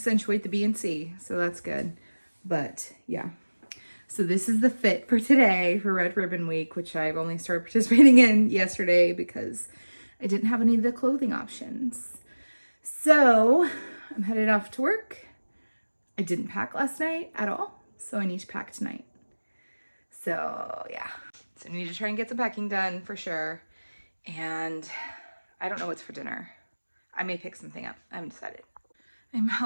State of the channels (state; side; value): inverted; both; correlation -1.00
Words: the B and C, so that's good. But yeah. So this is the fit for today for Red Ribbon Week, which I've only started participating in yesterday because I didn't have any of the clothing options. So I'm headed off to work. I didn't pack last night at all, so I need to pack tonight. So yeah, so I need to try and get some packing done for sure. And I don't know what's for dinner. I may pick something up. I haven't decided. I'm